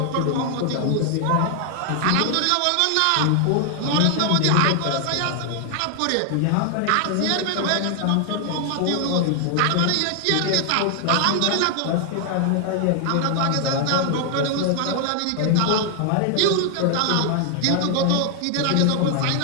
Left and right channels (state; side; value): different; both; correlation 0.00